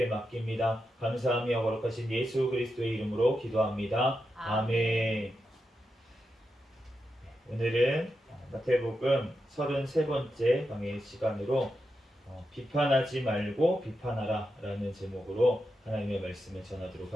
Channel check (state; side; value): normal; both; correlation 0.87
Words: 맡깁니다. 감사하며 거룩하신 예수 그리스도의 이름으로 기도합니다. 아멘. 오늘은 마태복음 33번째 강의 시간으로 비판하지 말고 비판하라 라는 제목으로 하나님의 말씀을 전하도록